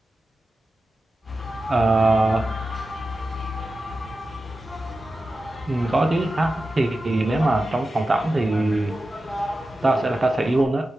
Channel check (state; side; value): normal; both; correlation 0.93